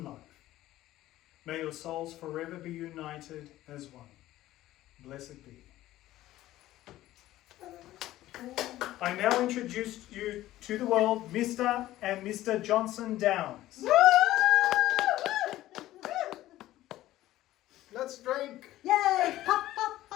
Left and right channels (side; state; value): right; quieter; 15.1 dB